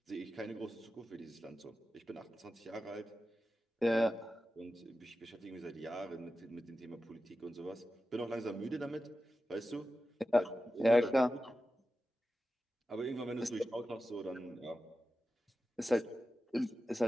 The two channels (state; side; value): normal; both; correlation 0.93